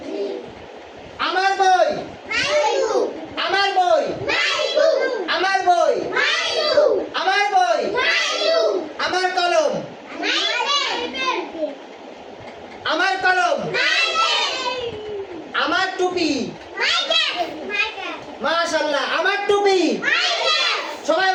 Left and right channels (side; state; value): both; identical; correlation 1.00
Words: আমার বই আমার বই আমার বই আমার বই আমার কলম আমার কলম আমার টুপি মাশাআল্লাহ আমার টুপি সবাই